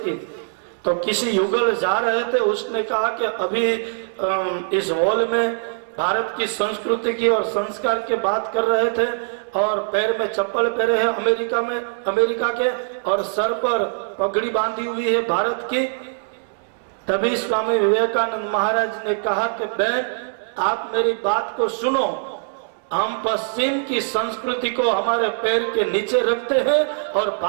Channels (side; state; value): left; silent; 64 dB below the other